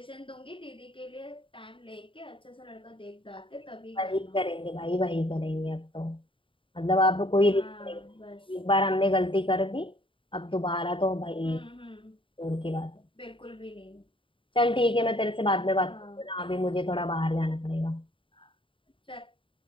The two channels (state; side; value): late; right; 0.25 ms